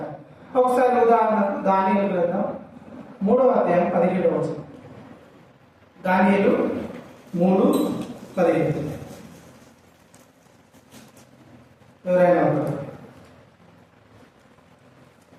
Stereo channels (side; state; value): both; identical; correlation 1.00